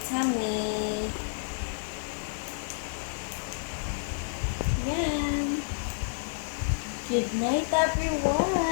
tummy. Yan. Good night,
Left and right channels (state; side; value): silent; right; digital silence